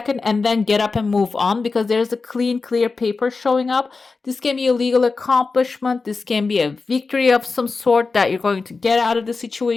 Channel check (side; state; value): right; quieter; 4.2 dB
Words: and then get up and move on, because there's a clear paper showing up. This can be a legal accomplishment. This can be a victory of some sort that you're going to get out of the